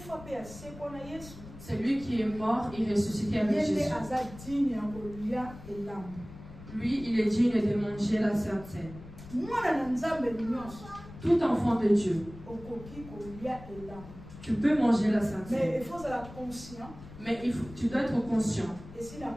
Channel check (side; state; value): left; noise; rumble, 16 dB below the sound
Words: C'est lui qui est mort et ressuscité avec Jésus. Lui, il est digne de manger la Sainte Seine. Tout enfant de Dieu, tu peux manger la Sainte Seine. Mais il faut être conscient. Mais tu dois être conscient.